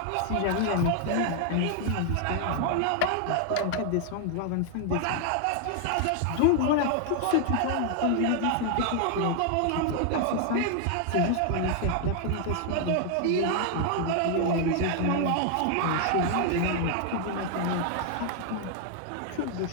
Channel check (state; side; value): different; both; correlation 0.00